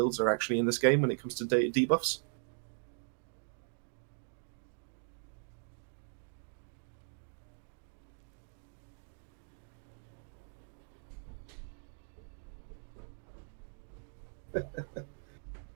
are actually in this game when it comes to debuffs?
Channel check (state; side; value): silent; left; digital silence